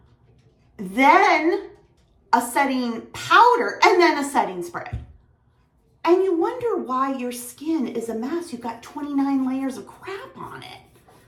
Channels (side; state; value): both; identical; correlation 1.00